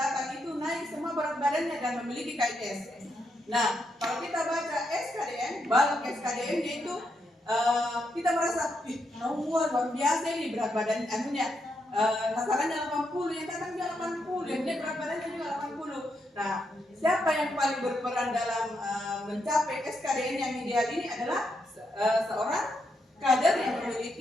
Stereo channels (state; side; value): normal; both; correlation 0.81